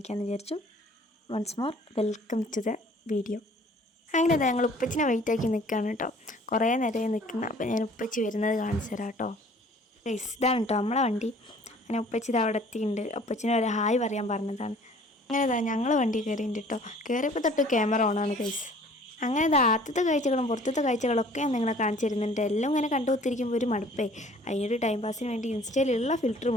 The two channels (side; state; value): both; normal; correlation 0.53